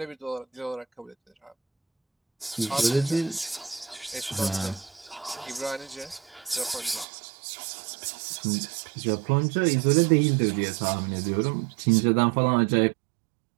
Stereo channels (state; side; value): drops out; left; at 7.1 s